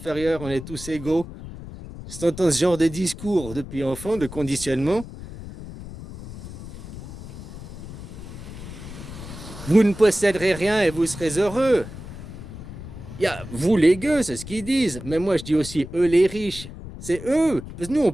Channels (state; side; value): noise; left; rumble, 12 dB below the sound